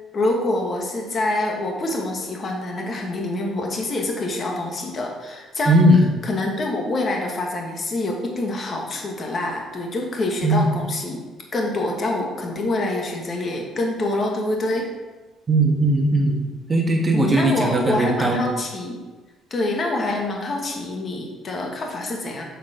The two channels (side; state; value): both; normal; correlation 0.64